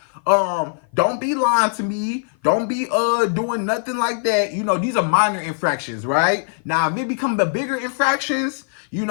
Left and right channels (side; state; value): right; silent; 56 dB below the other